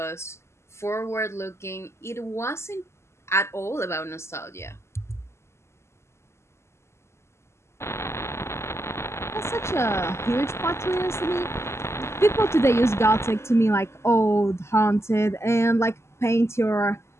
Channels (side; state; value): right; late; 0.13 ms